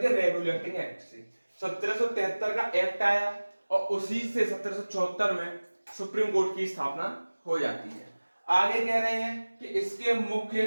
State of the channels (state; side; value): inverted; both; correlation -1.00